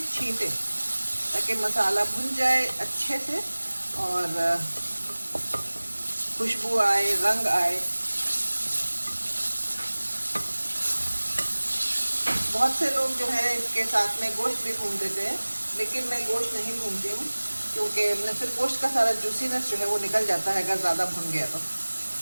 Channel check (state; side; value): inverted; both; correlation -1.00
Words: छींटे, ताकि मसाला भुन जाए अच्छे से और खुशबू आए, रंग आए। बहुत से लोग जो है इसके साथ में गोश्त भी भून देते हैं, लेकिन मैं गोश्त नहीं भूनती हूँ, क्योंकि फिर गोश्त का सारा जूसीनेस जो है वो निकल जाता है अगर ज़्यादा भुन गया तो।